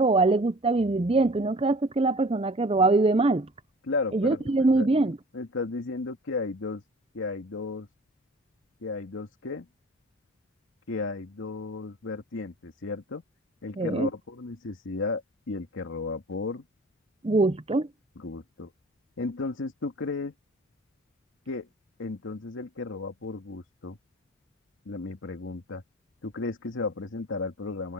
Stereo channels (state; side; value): normal; both; correlation 0.46